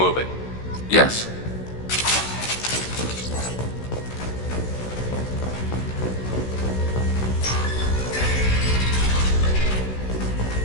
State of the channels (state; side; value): late; right; 16 ms